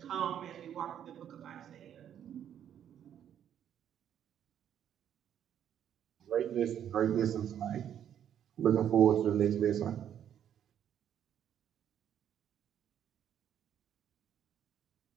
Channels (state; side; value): quieter; left; 9.7 dB